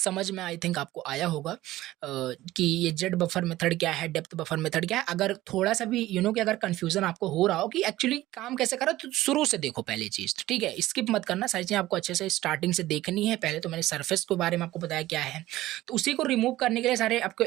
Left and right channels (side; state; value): left; quieter; 16.1 dB